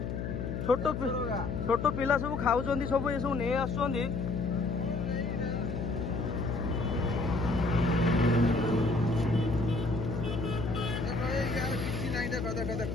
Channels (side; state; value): left; noise; hum, 3 dB below the sound